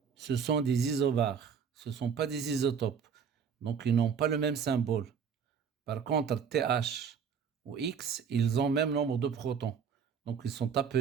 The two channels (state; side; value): quieter; left; 6.8 dB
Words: ce sont des isobars, ce ne sont pas des isotopes. Donc ils n'ont pas le même symbole. Par contre, TH ou X, ils ont même nombre de protons. Donc, ils sont